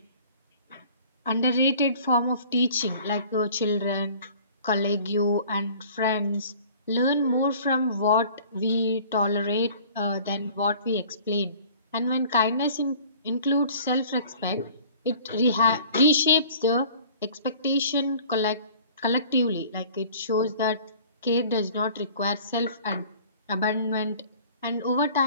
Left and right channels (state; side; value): inverted; both; correlation -0.49